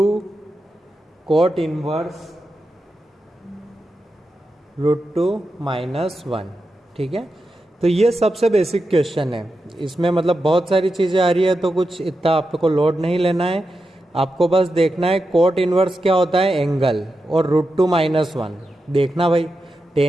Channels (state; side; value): normal; both; correlation 0.89